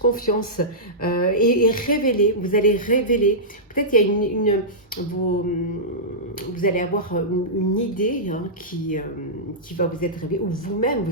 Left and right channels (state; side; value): normal; both; correlation -0.14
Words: et révéler, vous allez révéler, peut-être il y a vous allez avoir une idée, hein, qui va vous être révélée, ou vous-même